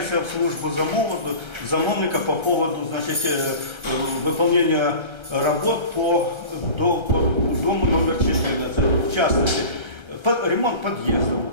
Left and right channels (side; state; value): left; late; 1.3 ms